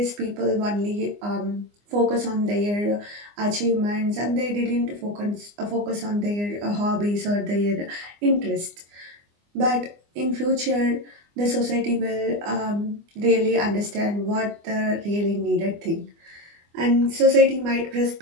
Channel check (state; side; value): late; left; 24 ms